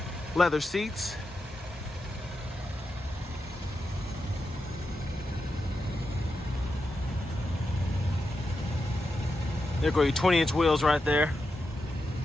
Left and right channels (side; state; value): both; normal; correlation 0.87